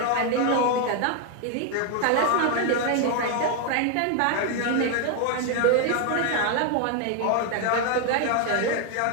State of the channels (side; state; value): both; different; correlation 0.00